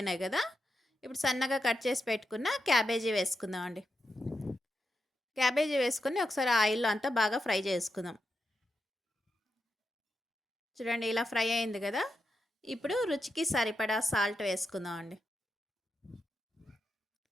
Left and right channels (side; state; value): both; normal; correlation 0.87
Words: కదా! ఇప్పుడు సన్నగా కట్ చేసి పెట్టుకున్న క్యాబేజీ వేసుకుందామండి. క్యాబేజీ వేసుకొని ఒకసారి ఆయిల్‌లో అంతా బాగా ఫ్రై చేసుకుందాం. చూడండి ఇలా ఫ్రై అయింది కదా! ఇప్పుడు రుచికి సరిపడా సాల్ట్ వేసుకుందామండి.